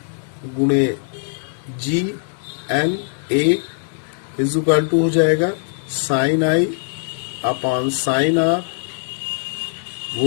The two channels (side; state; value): right; silent; digital silence